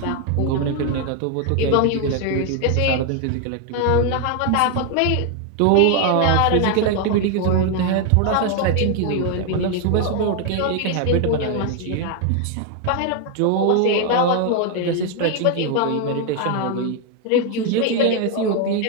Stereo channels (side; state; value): both; different; correlation 0.01